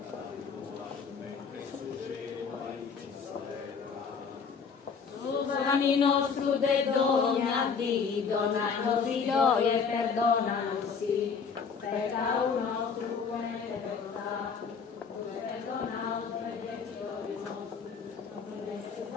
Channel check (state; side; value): quieter; right; 5.8 dB